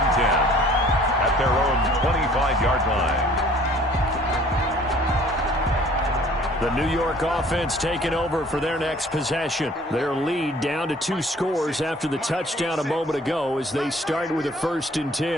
10 at their own 25-yard line. The New York offense taking over for their next possession. Their lead down to 2 scores after the touchdown a moment ago as they start with a 1st and 10.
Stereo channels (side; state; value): both; normal; correlation 0.54